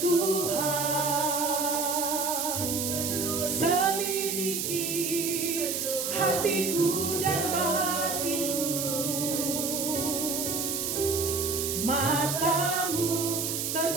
selidiki hatiku dan batinku, matamu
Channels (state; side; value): noise; right; hiss, 1 dB below the sound